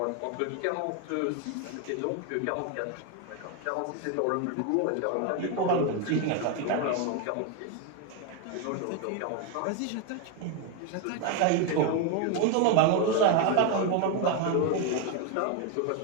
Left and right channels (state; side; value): different; both; correlation 0.01